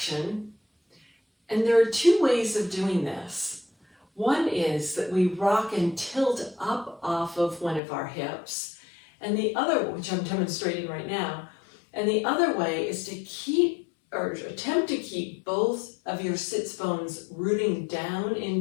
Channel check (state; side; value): drops out; right; at 7.8 s